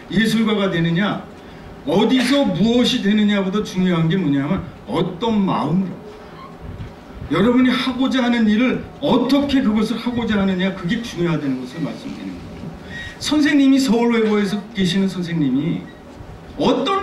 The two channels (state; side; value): identical; both; correlation 1.00